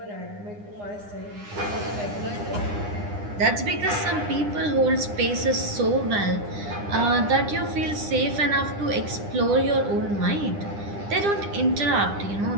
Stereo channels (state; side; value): late; left; 9.9 ms